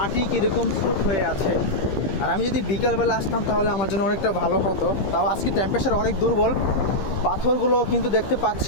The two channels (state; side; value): late; right; 15 ms